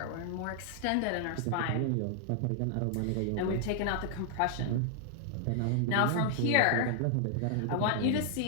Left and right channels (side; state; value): both; different; correlation 0.00